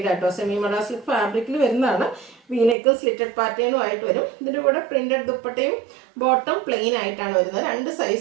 ആട്ടോ. സെമി മഡാസ്ലിക് ഫാബ്രിക്കിൽ വരുന്നതാണ്. വീനെക്കും സ്ലിറ്റഡ് പാറ്റേണും ആയിട്ട് വരും. ഇതിൻ്റെ കൂടെ പ്രിന്റഡ് ദുപ്പട്ടയും ബോട്ടം പ്ലെയിൻ ആയിട്ടാണ് വരുന്നത്. 2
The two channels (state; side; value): drops out; left; at 2.8 s